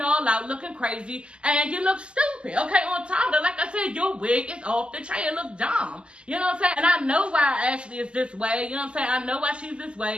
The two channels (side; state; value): left; late; 0.051 ms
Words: out, looking crazy. And you look stupid. Okay, on top of that, like I said, your wig is off the chain. It look dumb. You know what I'm saying? And I know why Ashley is this way. You know what I'm saying? I know why she's this